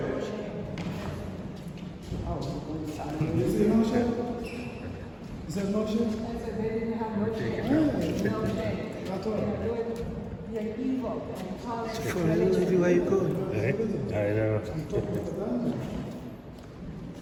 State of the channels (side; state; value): both; identical; correlation 1.00